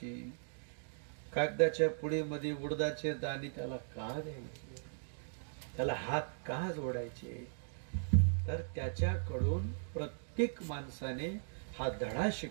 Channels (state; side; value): silent; left; digital silence